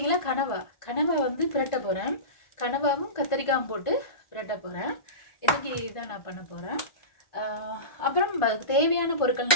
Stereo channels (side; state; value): right; late; 1.4 ms